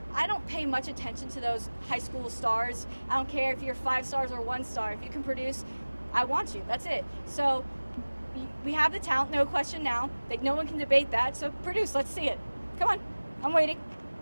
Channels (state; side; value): inverted; both; correlation -1.00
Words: I don't pay much attention to those high school stars. I don't care if you're 5 stars or 1 star. If you can produce, I want you. That's it. So we have the talent, no question now. Like, no one can debate that. So produce, let's see it. Come on, I'm waiting.